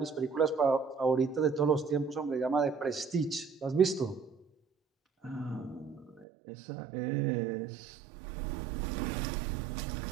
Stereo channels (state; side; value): drops out; left; at 6.2 s